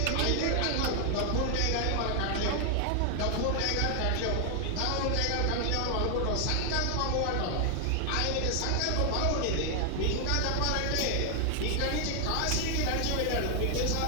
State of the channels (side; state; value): both; different; correlation 0.00